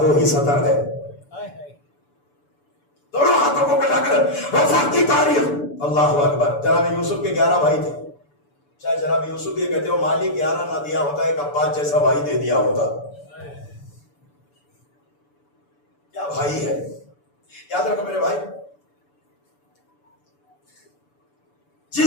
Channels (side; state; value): right; late; 6.9 ms